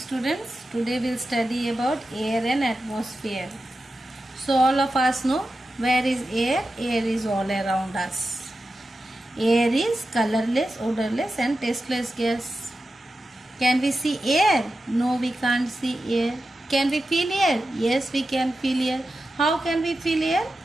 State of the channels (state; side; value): normal; both; correlation 0.91